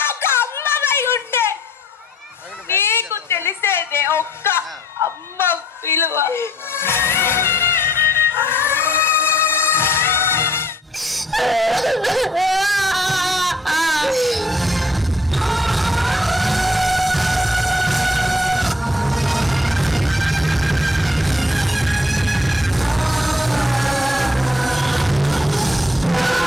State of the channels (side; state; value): both; normal; correlation 0.62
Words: తెలిసేదే ఒక్క అమ్మ విలువ.